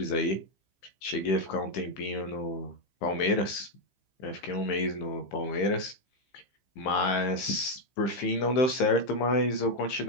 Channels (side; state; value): right; late; 15 ms